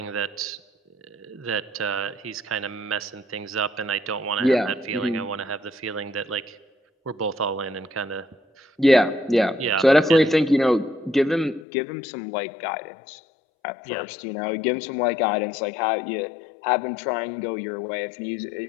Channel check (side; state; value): right; drops out; at 11.7 s